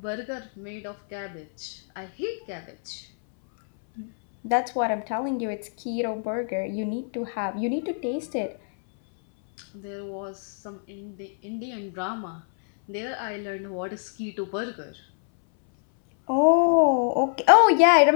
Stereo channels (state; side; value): silent; right; 61 dB below the other